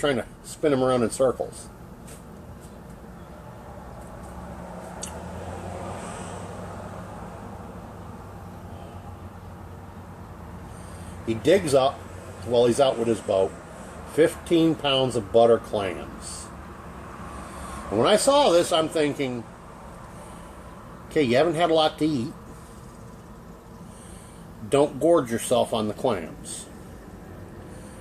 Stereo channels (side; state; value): both; identical; correlation 1.00